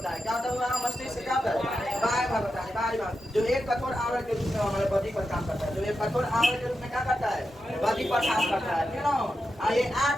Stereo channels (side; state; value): both; normal; correlation 0.89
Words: है, क्या होता होगा मस्तिष्क क्या होता है बाहर भाग होता है, बाहरी भाग जो एक कठोर आवरण के रूप में हमारे बॉडी पर काम करता है, जो एक कठोर आवरण के रूप में क्या करता है बॉडी पर काम करता है, क्यों ये